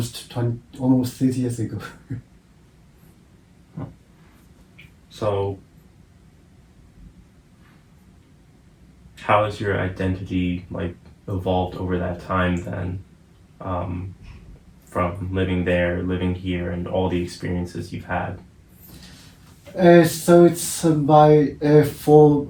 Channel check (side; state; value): both; identical; correlation 1.00